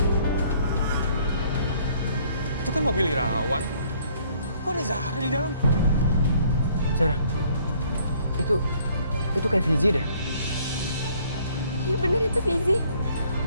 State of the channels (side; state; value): both; inverted; correlation -0.61